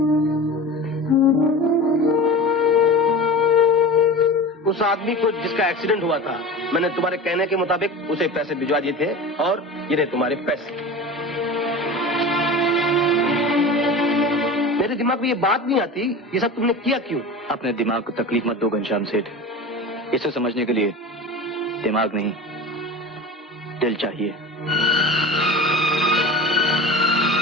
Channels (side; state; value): both; normal; correlation 0.32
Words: उस आदमी को जिसका एक्सीडेंट हुआ था, मैंने तुम्हारे कहने के मुताबिक उसे पैसे भिजवा दिए थे और ये रहे तुम्हारे पैसे। मेरे दिमाग में ये बात नहीं आती, ये सब तुमने किया क्यों? अपने दिमाग को तकलीफ मत दो घनश्याम सेठ। इसे समझने के लिए दिमाग नहीं, दिल चाहिए।